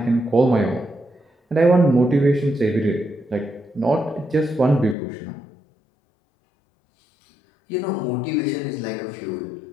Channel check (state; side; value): drops out; right; at 5.0 s